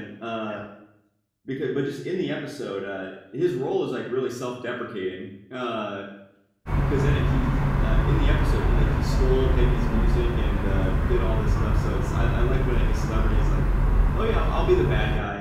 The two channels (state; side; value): identical; both; correlation 1.00